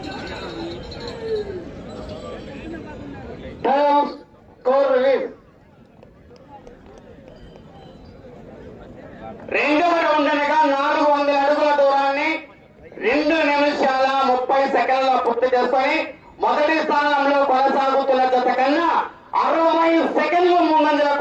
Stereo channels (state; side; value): identical; both; correlation 1.00